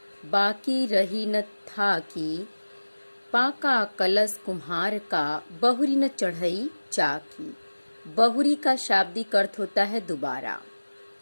बाकी रही न था की, पाका कलश कुम्हार का, बहुरी न चढ़ई चाकी। बहुरी का शाब्दिक अर्थ होता है दोबारा।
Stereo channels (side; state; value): both; inverted; correlation -1.00